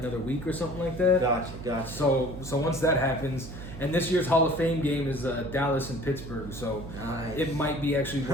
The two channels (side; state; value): right; noise; hum, 11 dB below the sound